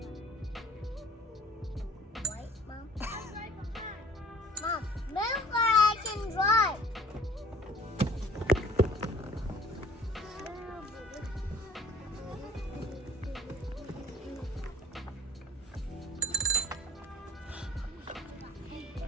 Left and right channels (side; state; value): both; normal; correlation 0.51